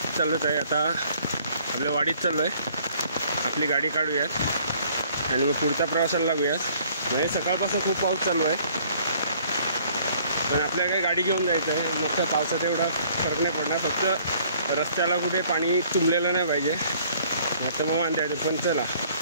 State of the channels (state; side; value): inverted; both; correlation -0.59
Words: चाललोच आहे। आता आपल्या वाडीत चाललो आहे, आपली गाडी काढूयात आणि मग पुढच्या प्रवासाला लागूयात। म्हणजे सकाळपासून खूप पाऊस चालू आहे, पण आपल्याला काही गाडी घेऊन जायचं आहे। मग त्या पावसात एवढा फरक नाही पडणार, फक्त रस्त्याला कुठे पाणी तुंबलेलं नाही पाहिजे, नाही तर मग वांदे येते। पण चला,